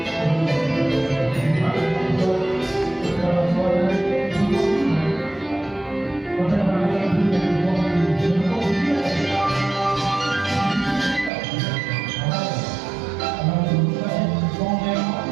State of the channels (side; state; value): left; drops out; at 11.3 s